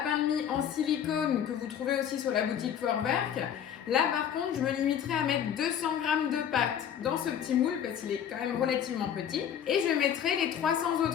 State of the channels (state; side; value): quieter; right; 9.0 dB